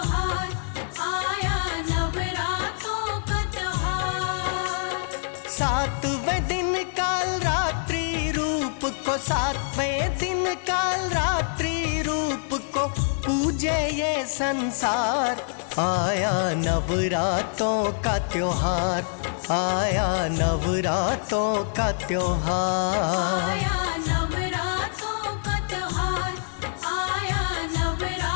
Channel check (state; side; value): silent; right; digital silence